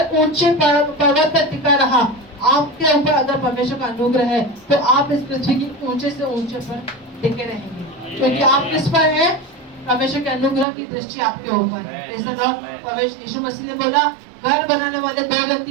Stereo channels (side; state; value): left; drops out; at 10.7 s